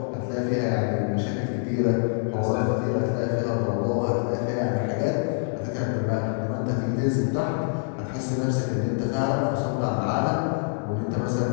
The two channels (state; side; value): silent; right; digital silence